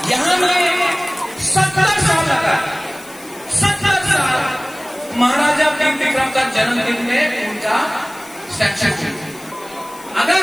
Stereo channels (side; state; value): left; noise; hiss, 21 dB below the sound